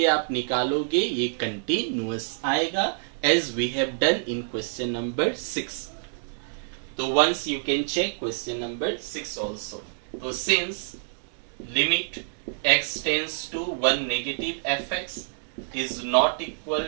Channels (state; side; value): silent; left; digital silence